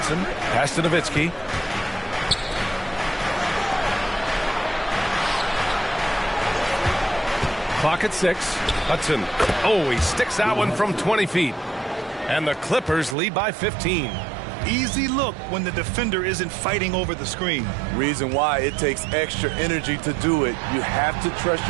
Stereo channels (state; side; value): drops out; left; at 13.2 s